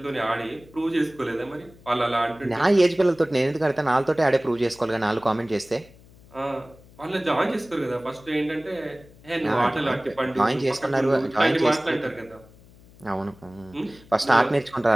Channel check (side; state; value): left; noise; hum, 24 dB below the sound